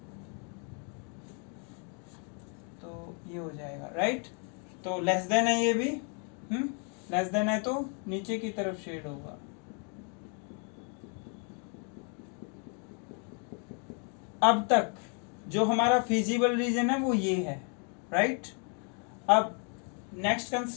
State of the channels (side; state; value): right; quieter; 39.7 dB